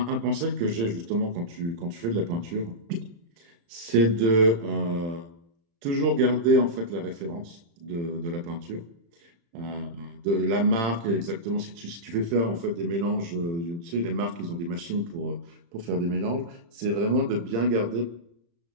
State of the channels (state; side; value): late; left; 35 ms